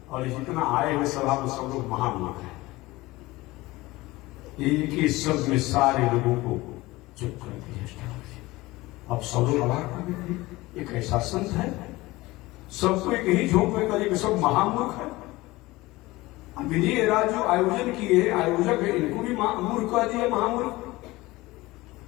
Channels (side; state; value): right; quieter; 20.0 dB